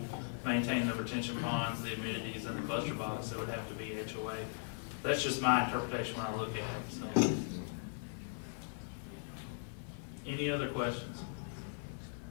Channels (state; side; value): silent; right; 52 dB below the other